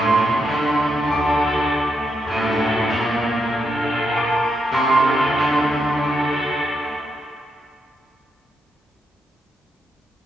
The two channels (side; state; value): both; normal; correlation 0.82